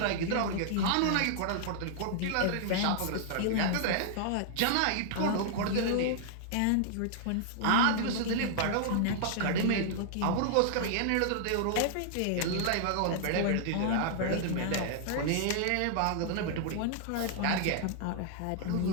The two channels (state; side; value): different; both; correlation -0.01